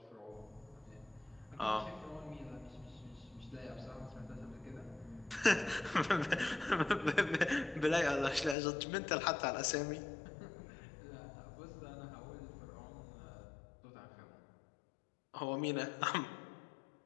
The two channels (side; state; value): right; drops out; at 8.6 s